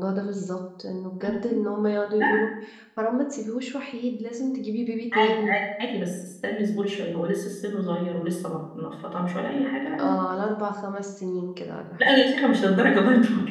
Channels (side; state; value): both; identical; correlation 1.00